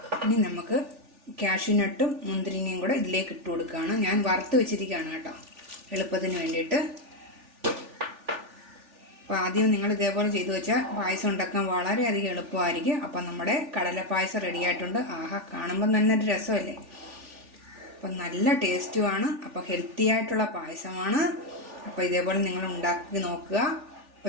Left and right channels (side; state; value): left; late; 3.4 ms